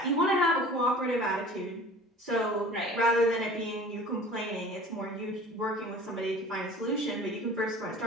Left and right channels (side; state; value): both; normal; correlation 0.44